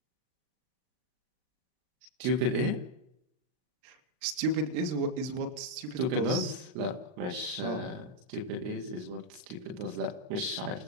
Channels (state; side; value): late; left; 39 ms